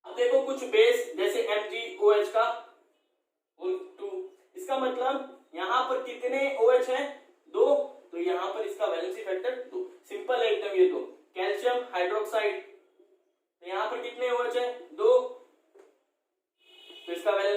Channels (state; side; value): identical; both; correlation 1.00